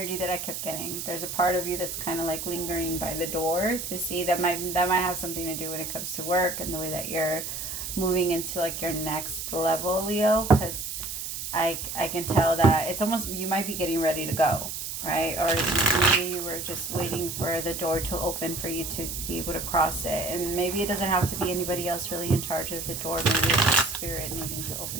that I kept getting. There's a part of you that's kind of like lingering by the door to see that might have something to do when it comes to work and the way that you're moving into like your next level, Leo. Because I can tell that it's almost, you might be getting ready to go, right? Or maybe you were just waiting for the door to open for you to be able to cross it. And maybe it doesn't have to be anybody else really in charge of the door. Maybe it's the spirit needing to open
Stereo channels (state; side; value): noise; right; hiss, 6 dB below the sound